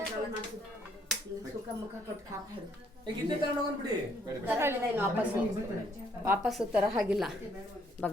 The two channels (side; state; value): both; normal; correlation 0.67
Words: ಸುಖ ಮುಖ ಕೊಟ್ಟು ಕಾಪಾಡು ವಾಪಸ್ಸು ತರ ಹಾಗಿಲ್ಲ